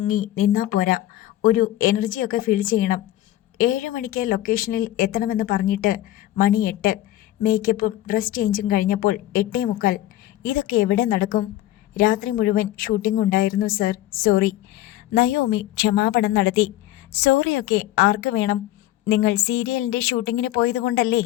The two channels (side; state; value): right; quieter; 14.6 dB